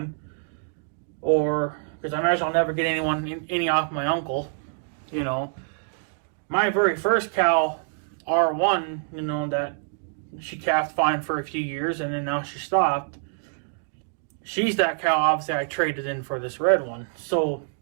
or because I imagine I'll never get any off my uncle. My very first cow, R1, that she calved fine for a few years and then now she stopped. She's that cow, obviously, I traded in for this red one. So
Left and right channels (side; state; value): left; silent; digital silence